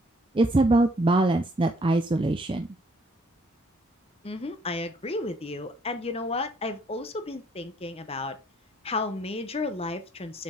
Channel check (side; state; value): both; normal; correlation 0.65